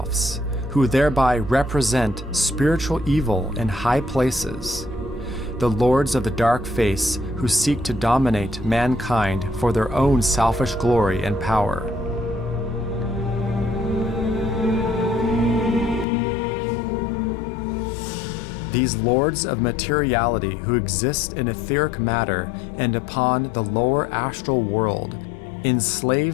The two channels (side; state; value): right; drops out; at 16.1 s